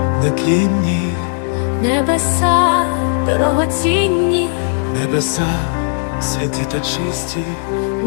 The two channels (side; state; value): right; silent; 64 dB below the other